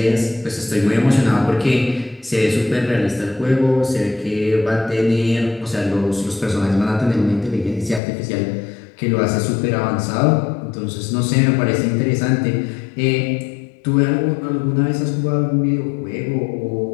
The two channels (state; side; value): drops out; right; at 8.0 s